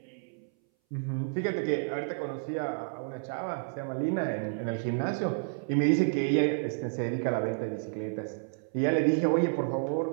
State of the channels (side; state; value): left; silent; 57 dB below the other